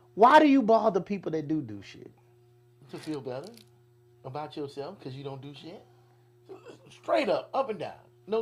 why do you bother people that do shit? To feel better about yourself because you don't do shit. Straight up and down.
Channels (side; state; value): both; identical; correlation 1.00